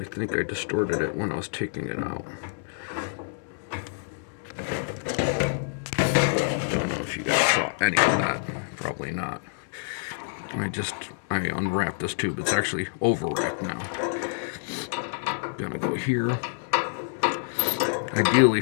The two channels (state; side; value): silent; right; 60 dB below the other